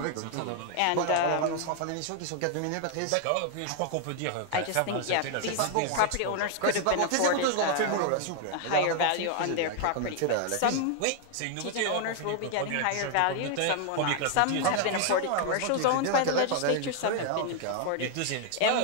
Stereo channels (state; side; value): different; both; correlation 0.00